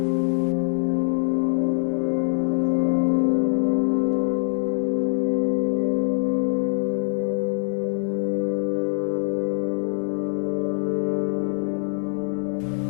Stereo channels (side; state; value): right; silent; digital silence